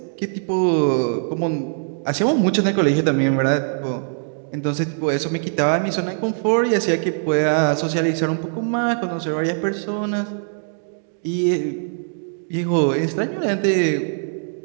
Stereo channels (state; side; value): silent; left; digital silence